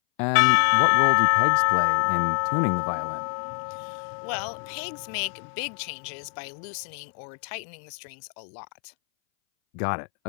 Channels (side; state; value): right; silent; 62 dB below the other